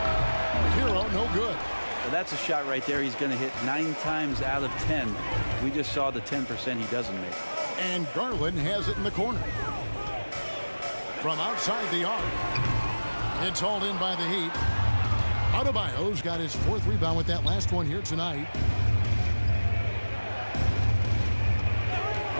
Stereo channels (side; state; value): both; inverted; correlation -1.00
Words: Hero, no good. Well, that's a shot right there he's going to hit 9 times out of 10. We just saw the 10% he doesn't make. And Garland has it in the corner. From outside the arc. It's hauled in by the Heat. Adebayo's got his 4th rebound with that last one here tonight.